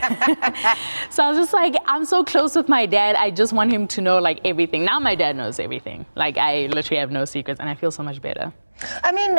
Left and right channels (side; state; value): both; inverted; correlation -1.00